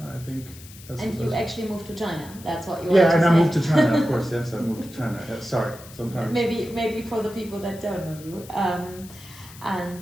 I think that's. And you actually moved to China. That's what you. Yeah, want and to I say. moved to China. Of course, yes, I moved to China. Sorry, sometimes. Maybe for the people that don't know you.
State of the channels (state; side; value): noise; left; hiss, 19 dB below the sound